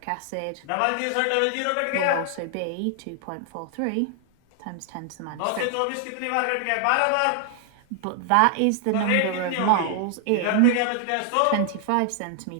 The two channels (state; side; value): different; both; correlation 0.00